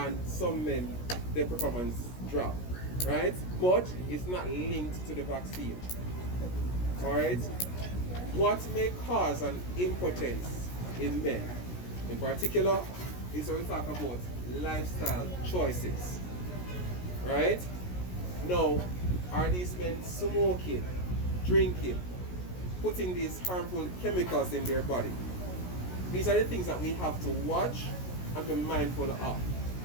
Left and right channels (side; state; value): right; late; 17 ms